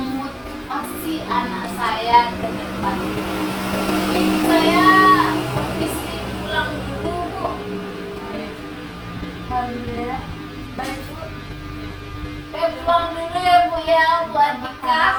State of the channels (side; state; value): both; identical; correlation 1.00